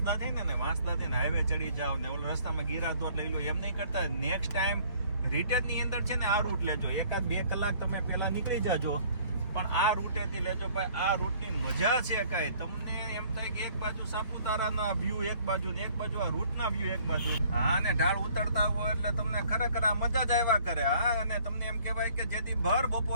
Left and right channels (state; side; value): inverted; both; correlation -0.57